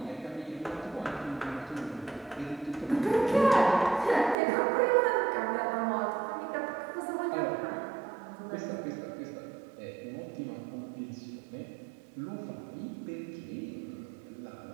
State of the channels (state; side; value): drops out; left; at 4.4 s